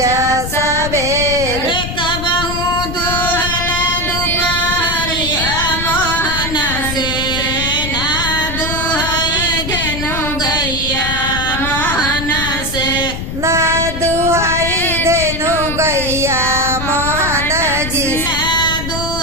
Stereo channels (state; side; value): noise; left; rumble, 6 dB below the sound